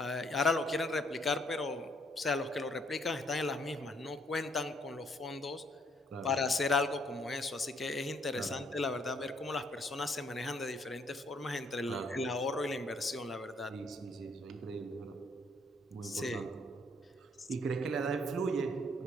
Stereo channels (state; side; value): normal; both; correlation 0.67